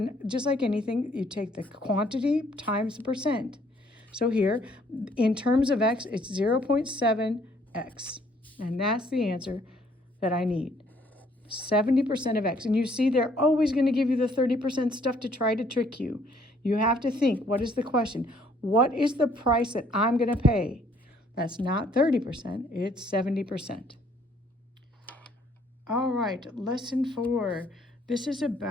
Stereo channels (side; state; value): both; normal; correlation 0.63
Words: just like anything, you take the quantity times the percent. So here, in terms of X, it's 0.7X. And that's the answer that I need. 70% of X. And you see, they're always going to give you the 30% stuff to try to trick you. You have to think, what is the question? What is the price that I'm going to pay? That's not 30%, it's 70%. All right, lesson 4. This is